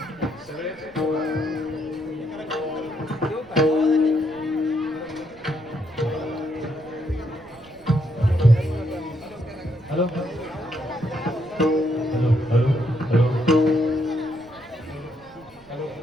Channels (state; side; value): noise; right; rumble, 28 dB below the sound